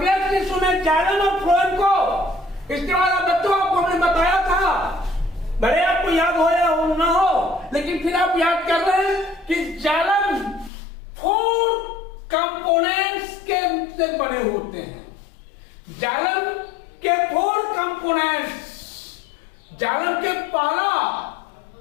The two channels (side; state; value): right; drops out; at 10.7 s